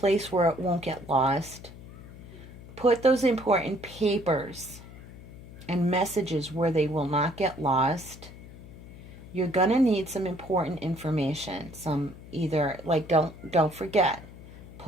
where it won't get lost. Put those important papers and messages where they will not get lost. You're going to need some important information. Some either, like, don't forget.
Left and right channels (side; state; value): left; noise; hum, 17 dB below the sound